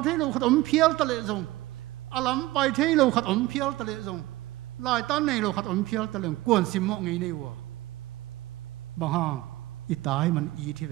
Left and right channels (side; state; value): left; quieter; 17.7 dB